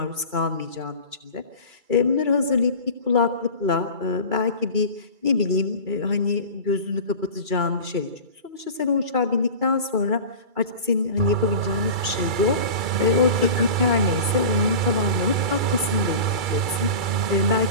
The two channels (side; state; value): left; late; 2.3 ms